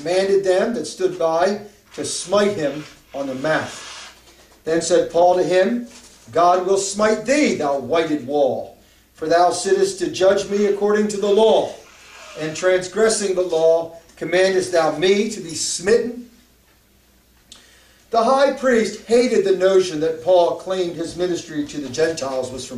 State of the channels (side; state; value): both; identical; correlation 1.00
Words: them that stood by to smite him on the mouth. Then said Paul to him, God will smite thee, thou whited wall, for thou sittest to judge me according to the law, and transgressing the law, commandest thou me to be smitten? The high priest hated the notion that Paul claimed his ministry to the Gentiles was